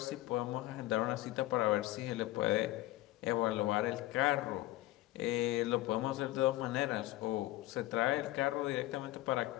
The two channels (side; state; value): right; quieter; 16.9 dB